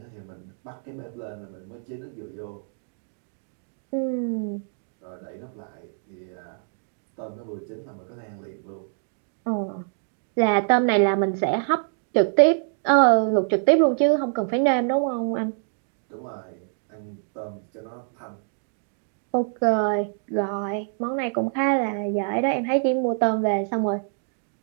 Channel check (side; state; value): left; silent; digital silence